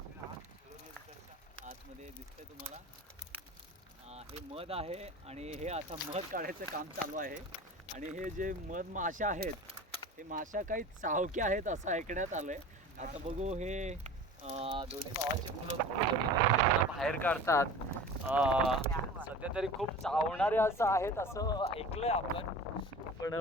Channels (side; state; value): both; normal; correlation 0.38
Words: आतमध्ये दिसतंय तुम्हाला. हे मध आहे आणि हे आता मध काढायचं काम चालू आहे. आणि हे जे मध माशा आहेत हे माशा काही चावके आहेत असं ऐकण्यात आलंय. आता बघू हे दोन्ही भावाची मुलं बाहेर काढतात. सध्या तरी खूप चावणारे असं आहेत असं ऐकलंय आपण, पण